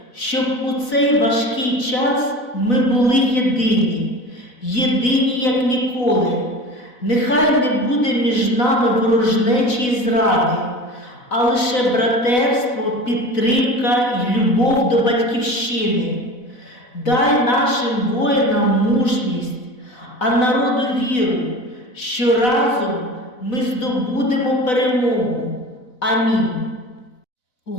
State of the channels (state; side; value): late; right; 4.0 ms